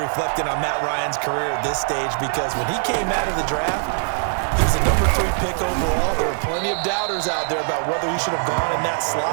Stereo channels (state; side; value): silent; left; 57 dB below the other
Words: reflecting on Matt Ryan's career at this stage because when he came out of the draft, he was the number 3 pick overall. There were plenty of doubters out there about whether he should have gone in that